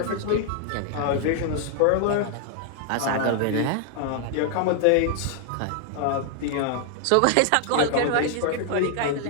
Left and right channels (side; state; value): both; different; correlation 0.00